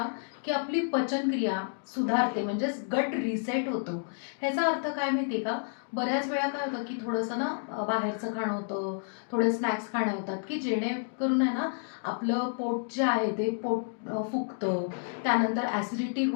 की आपली पचनक्रिया सुधारते, म्हणजेच गट रिसेट होतो. ह्याचा अर्थ काय माहिती आहे का? बऱ्याच वेळा काय होतं की थोडंसं ना बाहेरचं खाणं होतं, थोडे स्नॅक्स खाणे होतात की जेणेकरून आहे ना आपलं पोट जे आहे ते पोट फुगतं. त्यानंतर ॲसिडिटी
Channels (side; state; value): right; silent; digital silence